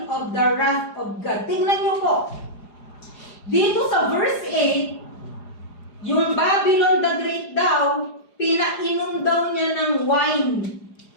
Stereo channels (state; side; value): late; right; 4.9 ms